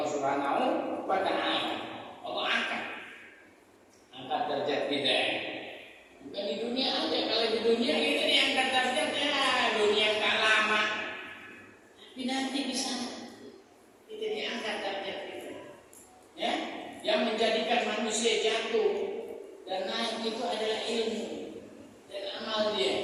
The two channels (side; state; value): both; identical; correlation 1.00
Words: Subhanahu wa taala. Allah angkat derajat kita. Bukan di dunia aja. Kalau di dunia kita diangkat derajatnya, dunia enggak lama. Tapi nanti di sana kita diangkat derajat kita. Ya, yang menjadikan manusia jatuh dan naik itu adalah ilmu dan amal dia.